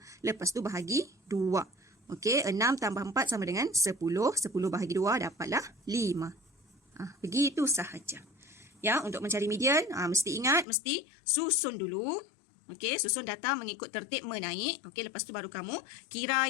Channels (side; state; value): right; drops out; at 10.7 s